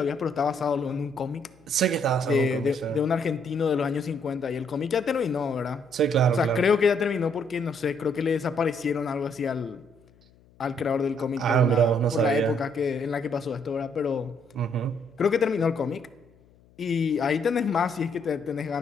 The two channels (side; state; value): left; noise; hum, 29 dB below the sound